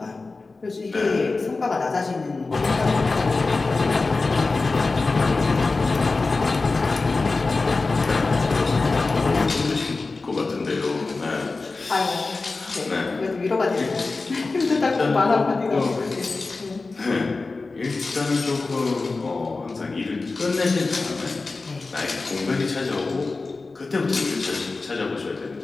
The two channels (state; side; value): quieter; right; 3.7 dB